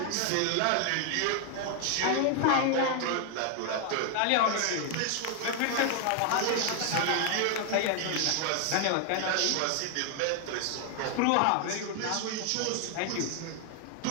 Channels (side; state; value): both; different; correlation 0.00